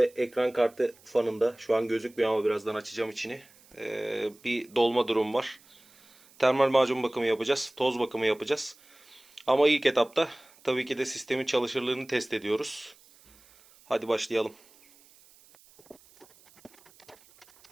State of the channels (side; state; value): right; noise; hiss, 27 dB below the sound